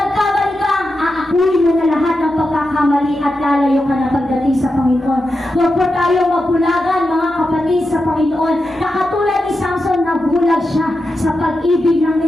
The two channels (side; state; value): both; normal; correlation 0.89